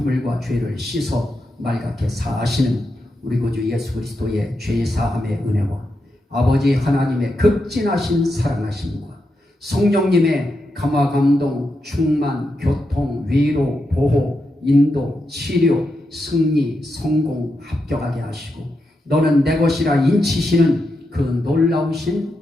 죄를 씻어 맑게 사하시는 우리 구주 예수 그리스도의 죄사함의 은혜와 아버지 하나님의 극진하신 사랑하심과 성령님의 감화 감동 충만 교통 위로 보호 인도 치료 승리 성공 합격하게 하시고 너는 내 것이라 인치시는 그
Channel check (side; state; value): both; normal; correlation 0.86